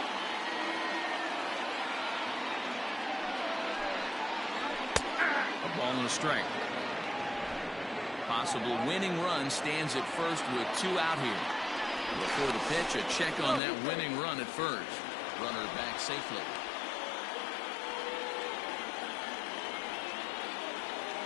A ball and a strike. Possible winning run stands at first with 2 out here. Before the pitch, a check on that winning run at first. Runner back safely.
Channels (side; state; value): right; drops out; at 13.6 s